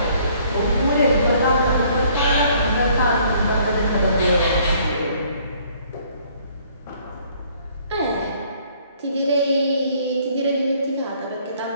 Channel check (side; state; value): both; inverted; correlation -0.61